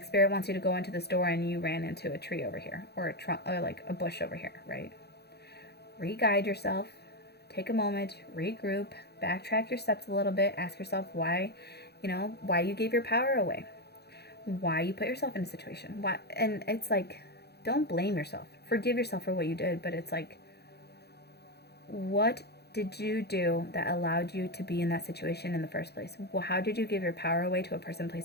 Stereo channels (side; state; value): right; late; 0.48 ms